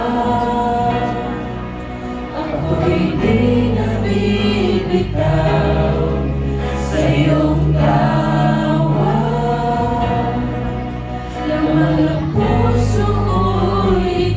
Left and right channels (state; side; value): identical; both; correlation 1.00